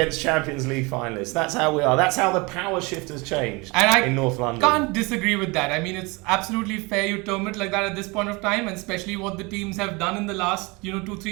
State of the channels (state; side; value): quieter; left; 26.5 dB